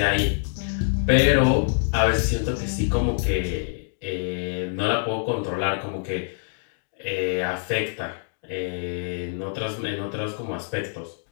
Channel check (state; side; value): silent; right; digital silence